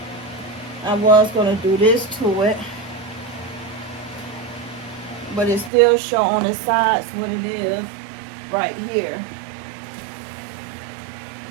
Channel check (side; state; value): left; drops out; at 5.7 s